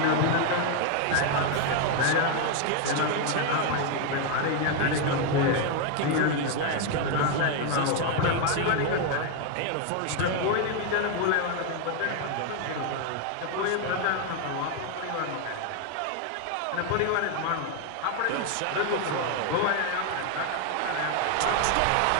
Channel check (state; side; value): different; both; correlation 0.01